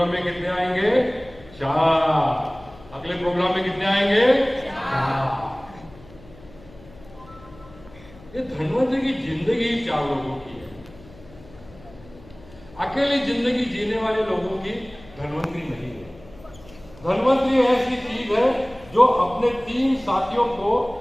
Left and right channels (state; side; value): noise; left; hum, 22 dB below the sound